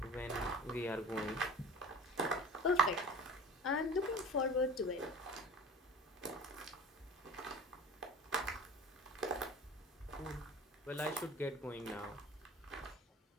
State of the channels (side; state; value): both; normal; correlation 0.37